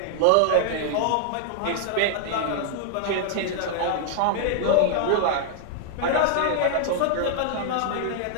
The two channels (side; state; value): both; different; correlation -0.01